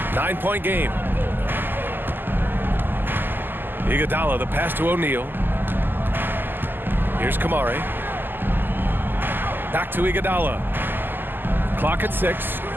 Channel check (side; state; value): left; late; 0.092 ms